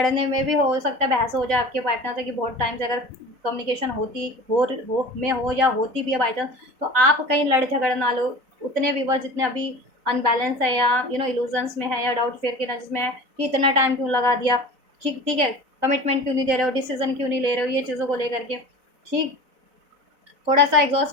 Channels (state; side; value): late; left; 4.0 ms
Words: में भी हो सकता है बहस हो जाए आपके पार्टनर से, कि बहुत टाइम से अगर कम्युनिकेशन हो या होती भी है बाई चांस, तो आप कहीं लड़ झगड़ ना लो। उतने व्यूवर जितने अभी अनबैलेंस है, या इल्यूजन्स में है, या डाउट फेयर के नजर में है कि इतना टाइम क्यों लगा दिया, ठीक ठीक है, कमिटमेंट क्यों नहीं दे रहे हो, डिसीजन क्यों नहीं ले रहे हो, ये चीज़ों को लेकर के। ठीक, थोड़ा सा एग्जॉस्ट